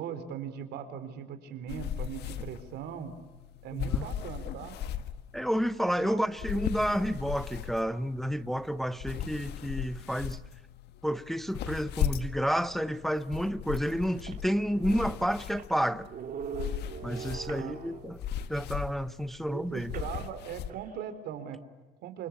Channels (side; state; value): both; normal; correlation 0.82